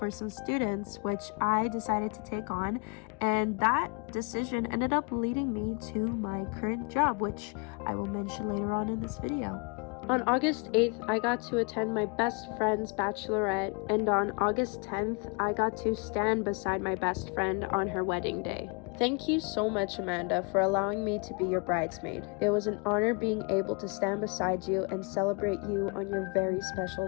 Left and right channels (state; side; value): quieter; right; 34.6 dB